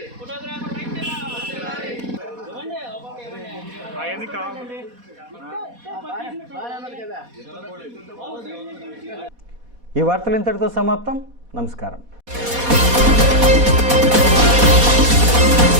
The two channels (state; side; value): late; left; 4.1 ms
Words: ఈ వార్తలు ఇంతటితో సమాప్తం. నమస్కారం.